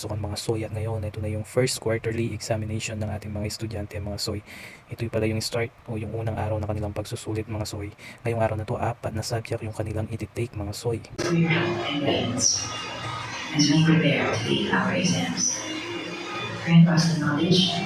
mga soy at ngayon ito na yung first quarterly examination ng ating mga estudyante mga soy. Ito pala yung start o yung unang araw na kanilang pagsusulit mga soy. Ngayong araw na to, 4 na subject yung kanilang ititake mga soy. As we prepare to take our exams, grant us the knowledge,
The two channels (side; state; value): both; identical; correlation 1.00